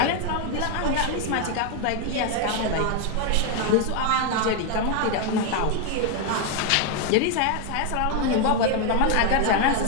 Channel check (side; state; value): both; different; correlation 0.01